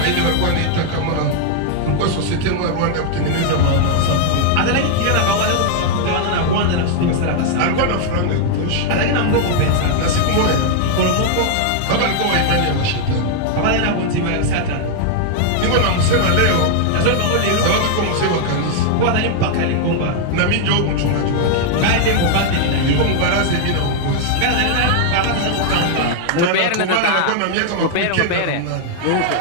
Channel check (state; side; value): different; both; correlation 0.00